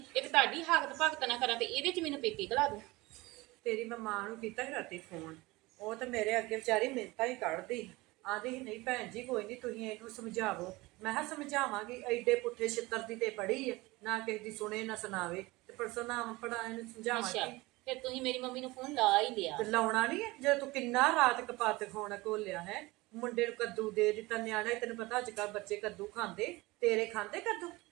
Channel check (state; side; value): quieter; left; 21.5 dB